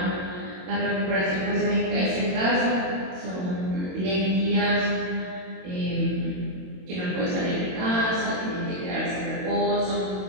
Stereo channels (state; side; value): late; left; 22 ms